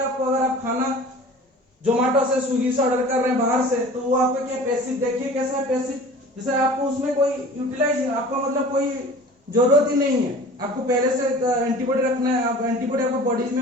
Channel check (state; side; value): normal; both; correlation 0.42